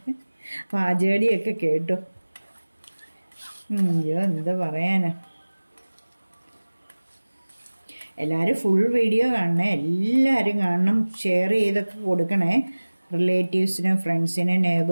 പാചകടിയൊക്കെ കേട്ടു. അയ്യോ എന്താ പറയാനാ. എല്ലാവരും ഫുൾ വീഡിയോ കാണണേ, എല്ലാവരും കാണണം, ഷെയർ ചെയ്തൊക്കെ കൊടുക്കണേ. റിലേറ്റീവ്സിനും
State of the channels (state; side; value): inverted; both; correlation -1.00